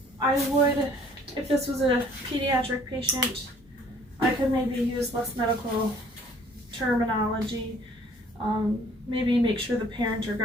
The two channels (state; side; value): normal; both; correlation 0.57